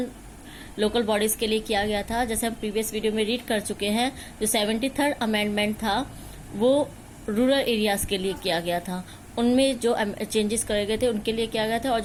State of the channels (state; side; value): identical; both; correlation 1.00